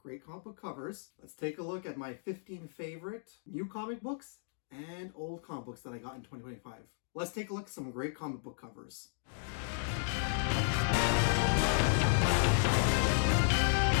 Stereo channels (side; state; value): right; silent; digital silence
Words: comic book covers, let's take a look at my 15 favorite new comic books and old comic books that I got in 2025. Let's take a look at some great comic book covers.